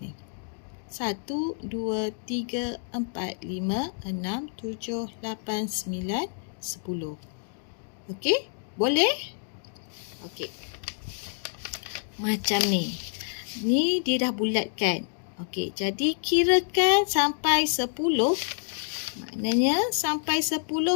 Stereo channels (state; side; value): silent; right; digital silence